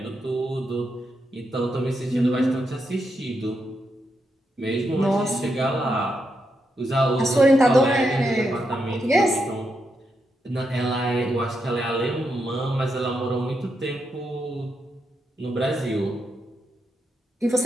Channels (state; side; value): normal; both; correlation 0.83